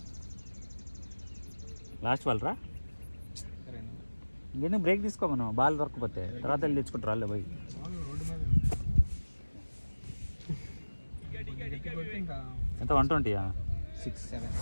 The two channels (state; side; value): inverted; both; correlation -1.00